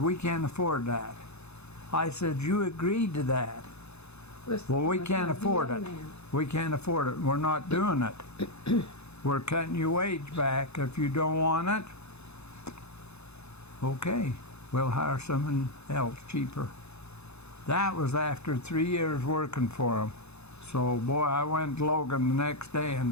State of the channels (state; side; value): late; right; 0.80 ms